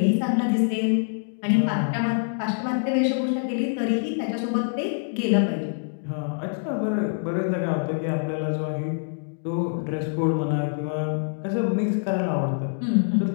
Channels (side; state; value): right; silent; digital silence